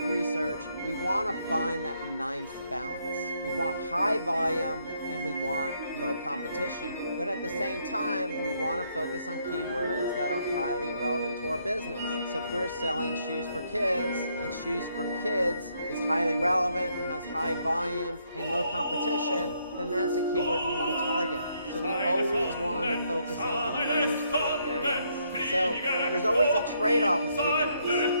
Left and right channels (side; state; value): both; inverted; correlation -0.73